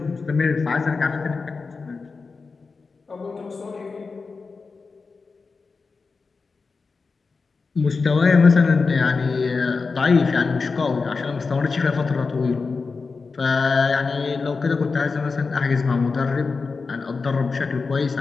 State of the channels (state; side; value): quieter; right; 4.5 dB